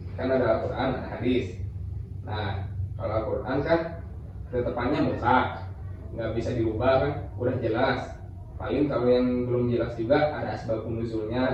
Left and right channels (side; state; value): both; identical; correlation 1.00